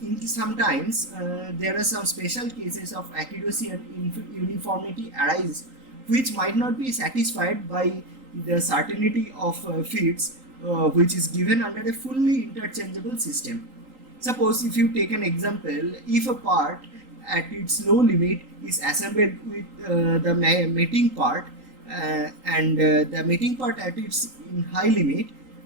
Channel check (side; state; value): left; late; 3.8 ms